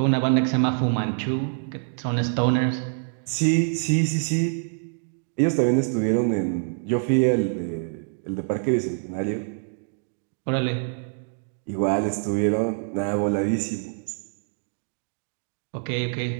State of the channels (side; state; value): left; silent; digital silence